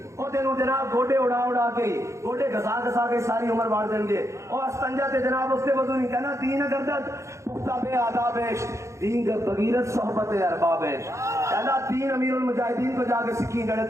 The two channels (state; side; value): late; left; 0.14 ms